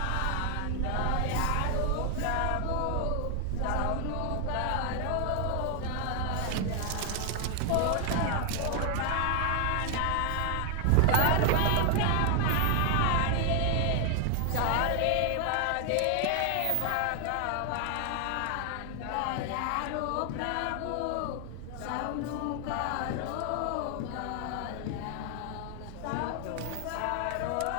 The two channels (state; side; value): different; both; correlation 0.00